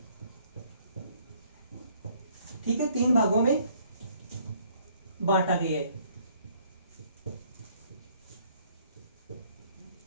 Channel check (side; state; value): both; inverted; correlation -0.63